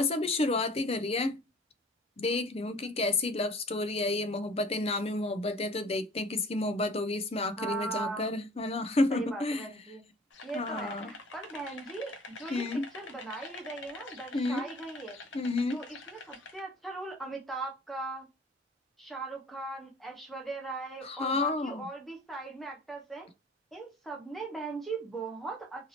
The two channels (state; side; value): normal; both; correlation 0.48